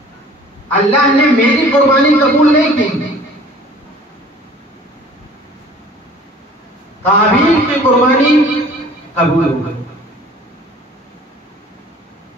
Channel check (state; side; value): normal; both; correlation 0.49